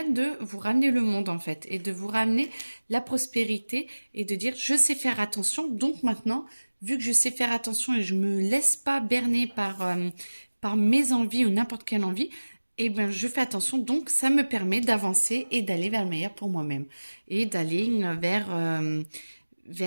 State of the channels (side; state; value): both; inverted; correlation -1.00